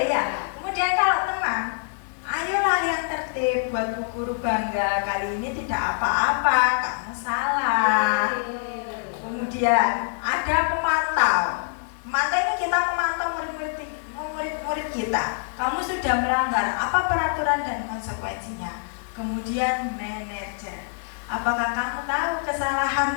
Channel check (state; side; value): silent; right; 62 dB below the other